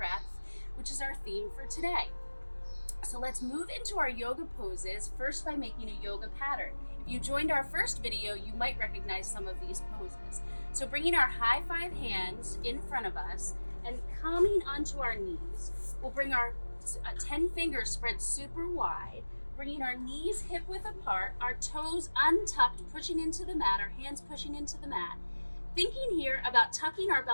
which is our theme for today. So let's move into our yoga poses, first by making a yoga pattern. If you joined our first video, you might recognize some of these poses. So bringing our high 5 hands in front of us and coming onto our knees, we'll bring our 10 fingers spread super wide, bringing our knees hip width apart, our toes untucked, pushing into the mat, our hands pushing into the mat. Thinking here about tucking our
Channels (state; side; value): inverted; both; correlation -1.00